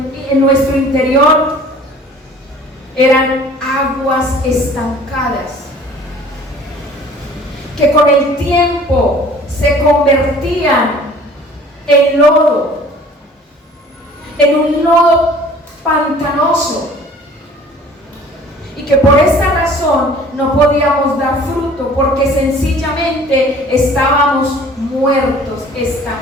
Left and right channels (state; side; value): normal; both; correlation 0.49